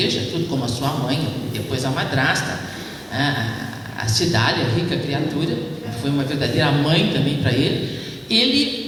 tudo como a sua mãe, e depois a madrasta, a Cidália, a rica criatura, foi uma verdadeira mãe também para ele.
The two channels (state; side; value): identical; both; correlation 1.00